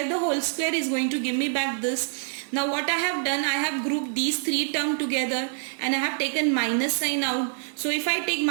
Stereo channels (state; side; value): silent; left; digital silence